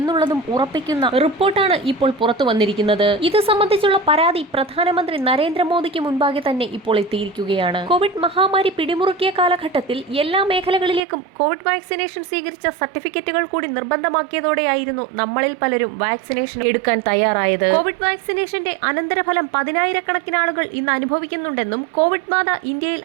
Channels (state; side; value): drops out; left; at 11.0 s